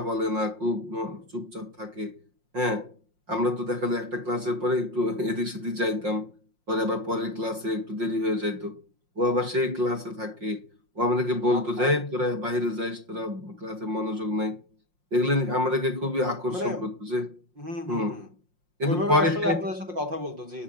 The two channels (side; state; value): left; late; 5.6 ms